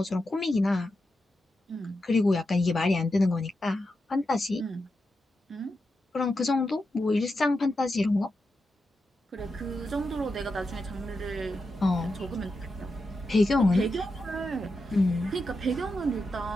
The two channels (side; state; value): both; normal; correlation 0.88